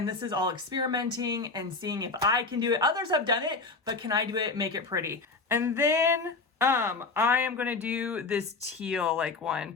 this is all experimenting and seeing if I can do it. Others have done it, but can I do it, make it pretty? And then I am gonna do this teal like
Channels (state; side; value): quieter; right; 3.9 dB